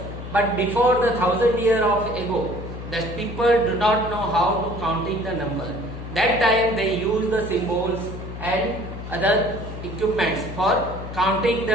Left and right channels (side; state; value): left; noise; hum, 9 dB below the sound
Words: but before the 1000 years of ago, the people do not know how to counting the number. That time they use the symbols and other equipments for counting